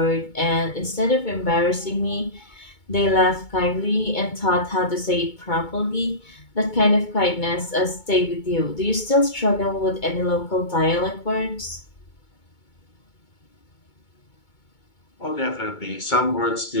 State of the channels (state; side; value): late; right; 2.2 ms